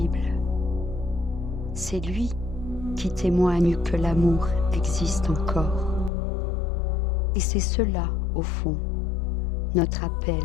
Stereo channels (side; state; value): right; drops out; at 6.1 s